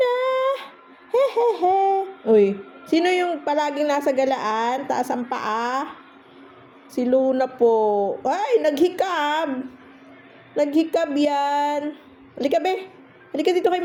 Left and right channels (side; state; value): both; identical; correlation 1.00